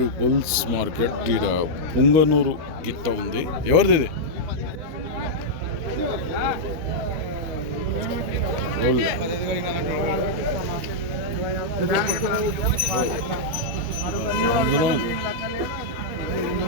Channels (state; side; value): late; left; 13 ms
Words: bulls market. ఈడ పుంగనూరు గిత్త ఉంది. ఎవరిది ఇది?